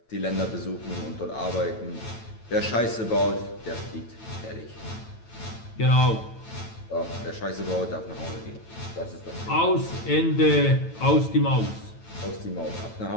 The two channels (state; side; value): late; right; 9.0 ms